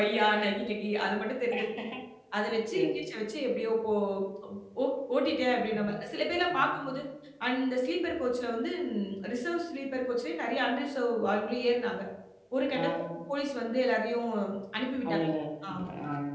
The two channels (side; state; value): both; identical; correlation 1.00